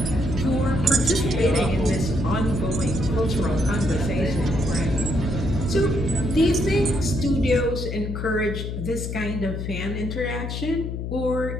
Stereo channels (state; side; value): noise; left; hum, 4 dB below the sound